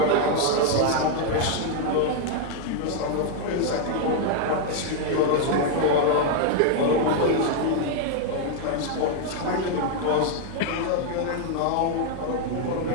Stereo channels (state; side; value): different; both; correlation 0.00